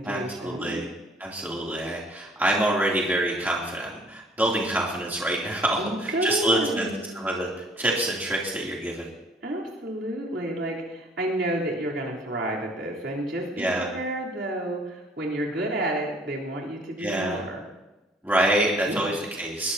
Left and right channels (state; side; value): normal; both; correlation 0.57